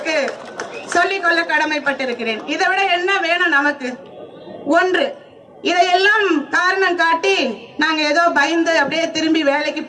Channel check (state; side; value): identical; both; correlation 1.00